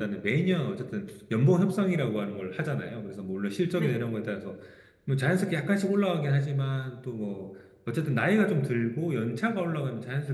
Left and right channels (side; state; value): both; identical; correlation 1.00